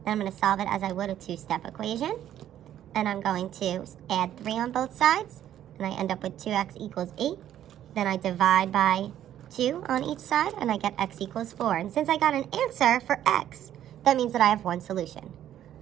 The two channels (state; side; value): quieter; left; 11.3 dB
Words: I'm going to solve it as I would a two-step equation. And I'm going to add 3 on both sides. And I end up with 2x equals 8. Then I divide by 2 on each side, and I get x equals 4. And since I got an answer for x, that means that I have one solution.